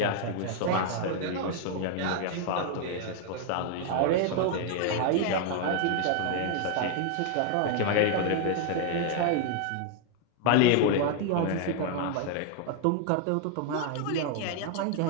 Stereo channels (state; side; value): different; both; correlation 0.00